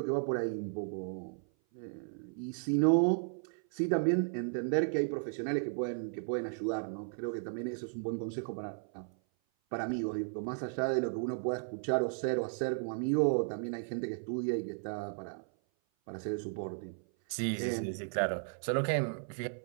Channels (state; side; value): silent; left; 55 dB below the other